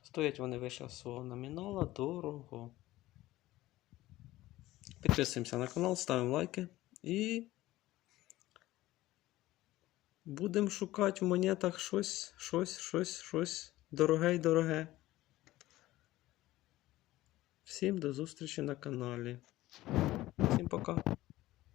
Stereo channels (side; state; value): right; quieter; 16.7 dB